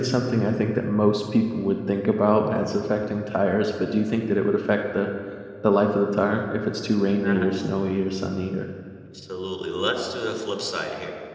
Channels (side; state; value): both; identical; correlation 1.00